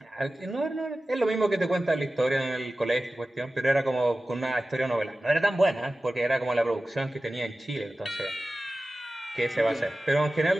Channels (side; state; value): both; normal; correlation 0.95